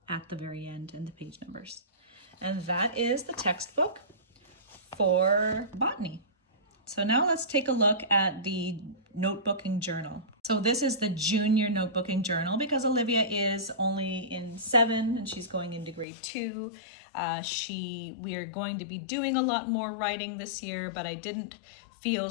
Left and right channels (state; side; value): drops out; right; at 16.1 s